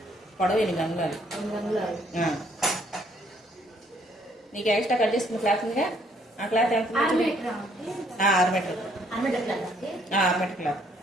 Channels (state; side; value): normal; both; correlation 0.66